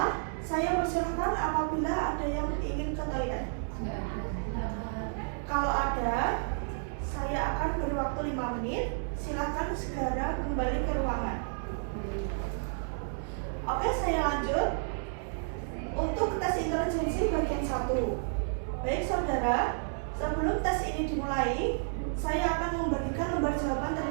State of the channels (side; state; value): left; silent; digital silence